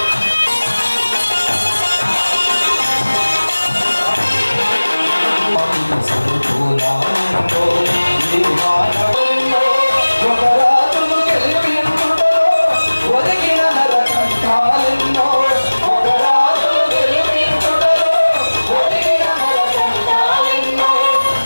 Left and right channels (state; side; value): inverted; both; correlation -1.00